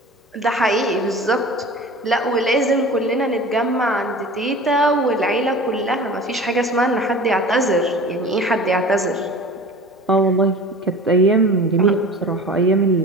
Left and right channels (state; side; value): normal; both; correlation 0.38